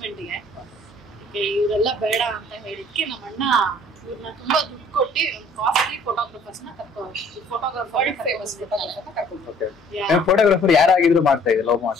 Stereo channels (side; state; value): both; normal; correlation 0.56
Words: ಇವರೆಲ್ಲ ಬೇಡ ಅಂತ ಹೇಳಿದ್ಕೆ ನಮ್ಮ ಅಣ್ಣ ಇವ್ರನ್ನ ತುಂಬಾ ದುಡ್ಡು ಕೊಟ್ಟು ಕಾಸ್ಟ್ಲಿ ಫೋಟೋಗ್ರಾಫರ್ಸ್ ನ ಕರ್ಕೊಂಡು ವರ್ಲ್ಡ್ ಫೇಮಸ್ ಫೋಟೋಗ್ರಾಫರ್ ಕರ್ಕೊಂಡು. ಫೋಟೋಗ್ರಾಫರ್ ಯಾರಾಗಿದ್ರು ಮಾಡ್ತಾ ಇದ್ರೆ ಲವ್